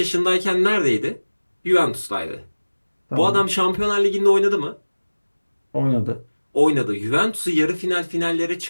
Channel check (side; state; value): both; inverted; correlation -1.00